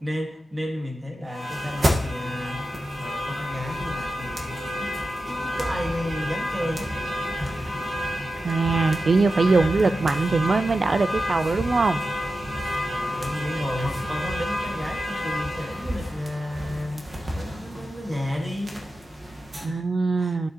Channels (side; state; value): both; normal; correlation 0.92